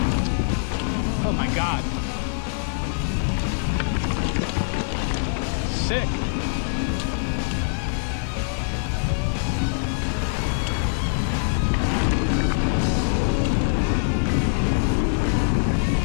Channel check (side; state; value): right; silent; digital silence